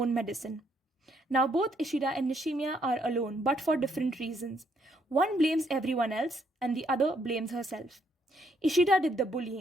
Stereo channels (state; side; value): normal; both; correlation 0.71